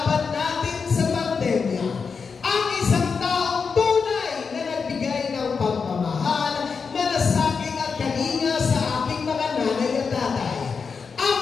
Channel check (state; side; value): quieter; right; 5.4 dB